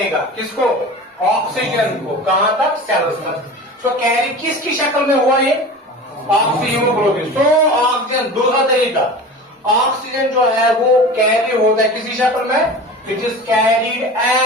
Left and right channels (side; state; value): both; normal; correlation 0.35